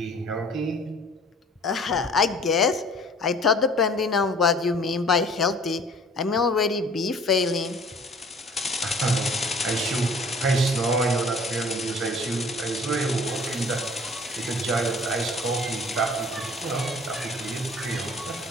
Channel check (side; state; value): both; normal; correlation 0.50